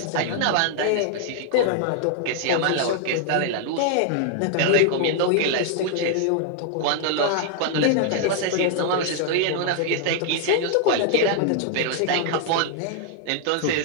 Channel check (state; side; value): different; both; correlation 0.00